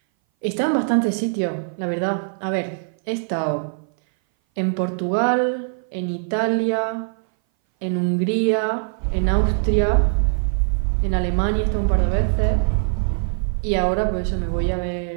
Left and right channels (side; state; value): left; silent; 59 dB below the other